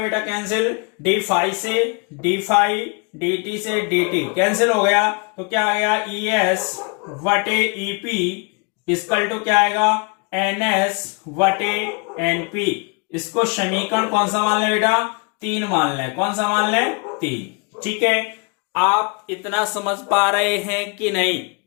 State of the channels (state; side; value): quieter; right; 34.0 dB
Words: कैंसिल। डी फाइव से डी फाइव, डी टी से डी टी कैंसिल हो गया, तो क्या आ गया? ई एस वटे ईपी इसकल टू क्या आएगा? एन एस वटे एनपी। इसको समीकरण कौन सा मान ले बेटा? 3 मान ले। कौन सा मान ले? 3। ठीक है, आप इतना समझ पा रहे हैं कि नहीं?